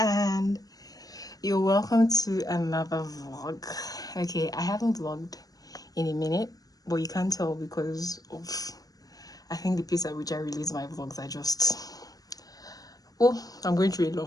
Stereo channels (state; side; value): late; right; 0.18 ms